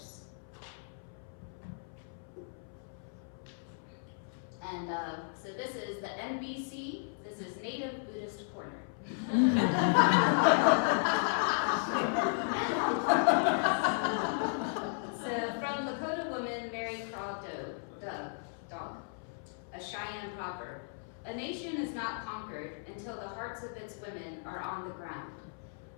And so this is the NBC. This is Native Buddhist Corner. So from Lakota woman Mary Craw Dog, a Cheyenne proverb, a nation is not conquered until the hearts of its women are on the ground.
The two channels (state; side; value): silent; right; 55 dB below the other